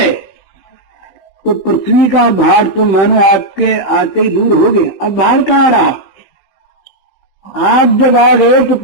तो पृथ्वी का भार तो मानो आपके आते ही दूर हो गया। अब भार कहाँ रहा? आप जब आ गए तो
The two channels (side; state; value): right; late; 15 ms